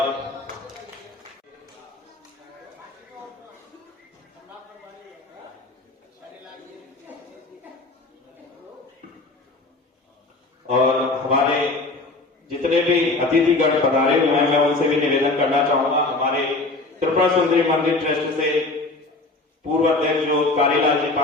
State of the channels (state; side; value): quieter; right; 3.2 dB